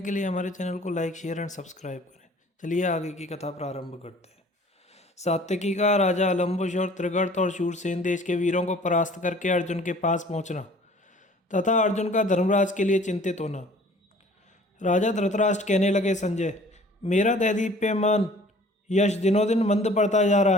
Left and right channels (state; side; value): normal; both; correlation 0.51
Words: के लिए हमारे चैनल को लाइक शेयर एंड सब्सक्राइब करें। चलिए आगे की कथा प्रारंभ करते हैं। सात्यकी का राजा अलम्बुश और त्रिगर्त और शूरसेन देश के वीरों को परास्त करके अर्जुन के पास पहुंचना तथा अर्जुन का धर्मराज के लिए चिंतित होना। राजा धृतराष्ट्र कहने लगे, संजय, मेरा दैदीप्यमान यश दिनों दिन मंद पड़ता जा